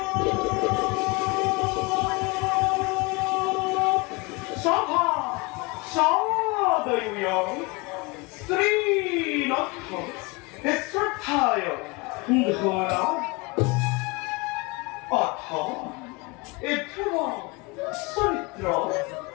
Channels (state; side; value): quieter; right; 26.4 dB